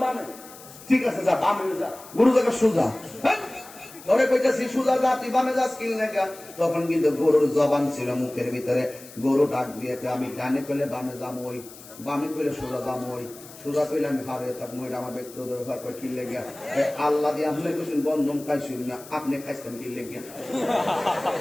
বামে। ঠিক আছে যা, বামে যা, গরু জায়গা সোজা। হ্যাঁ? ধরে কইতাছি সোজা যা, তুই বামে যাস কি লেখা? তখন কিন্তু গরুর জবান ছিল মুখের ভিতরে। গরু ডাক দিয়ে আমি ডানে কইলে বামে যাম ওই, বামে কইলে সোজা যাম ওই, সোজা কইলে আমি হারে থাকবো, এটা আমার ব্যক্তিগত ব্যাপার। করে কি লেগে আল্লাহ দিয়ে আপনি কইছেন বন্ধন খাইছেন না, আপনি খাইছেন কি লেগে?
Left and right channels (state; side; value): noise; left; hiss, 18 dB below the sound